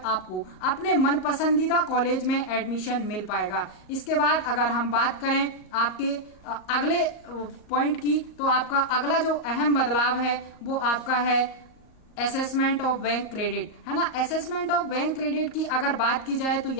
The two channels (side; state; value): right; late; 38 ms